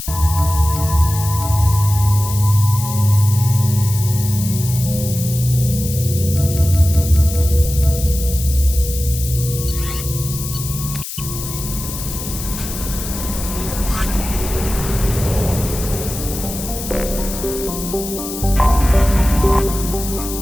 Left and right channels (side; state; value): left; noise; hiss, 8 dB below the sound